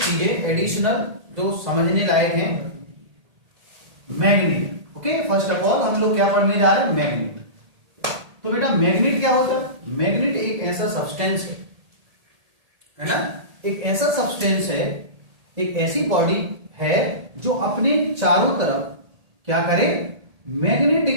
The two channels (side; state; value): left; late; 1.8 ms